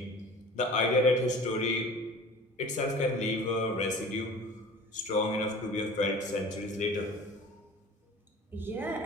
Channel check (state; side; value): normal; both; correlation 0.42